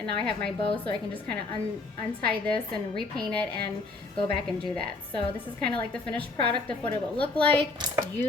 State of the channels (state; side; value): quieter; right; 3.5 dB